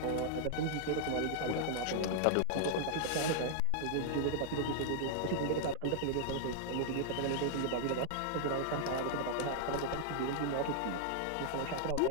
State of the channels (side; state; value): both; different; correlation 0.00